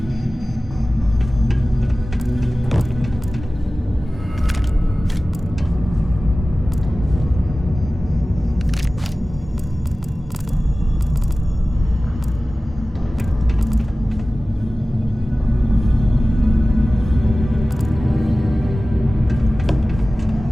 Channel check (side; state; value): both; normal; correlation 0.97